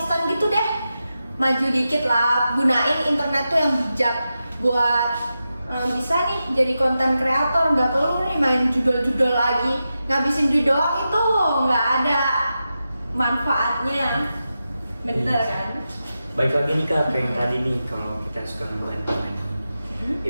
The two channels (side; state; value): both; inverted; correlation -0.90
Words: gitu deh. Maju dikit lah, gunain internet tuh yang bijak buat bisa nih jadi konten kreator, nggak perlu nih main judul-judul lagi, ngabisin duit doang itu nggak ada manfaatnya, bener kan? Baik lagi nih Kak, yang tadi nih kalau kita suka ngebantu